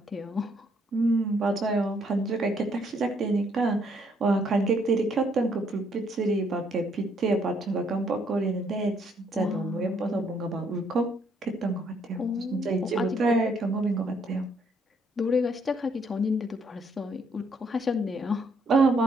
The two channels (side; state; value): both; normal; correlation 0.69